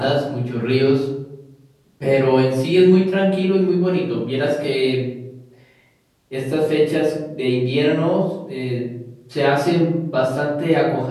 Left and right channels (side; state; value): both; identical; correlation 1.00